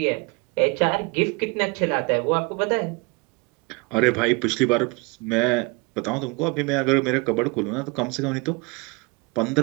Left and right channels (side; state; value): left; quieter; 27.6 dB